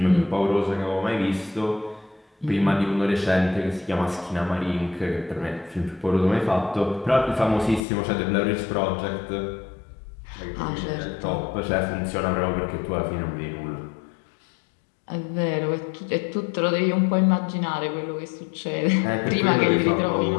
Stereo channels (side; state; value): right; drops out; at 7.8 s